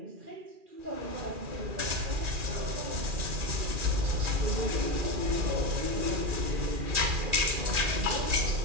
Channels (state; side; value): late; left; 2.4 ms